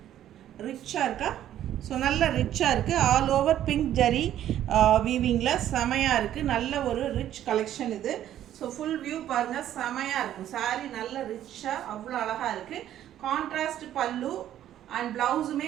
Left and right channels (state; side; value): quieter; left; 11.7 dB